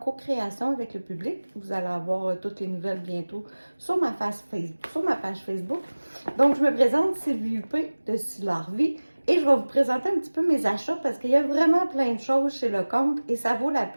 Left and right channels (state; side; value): inverted; both; correlation -1.00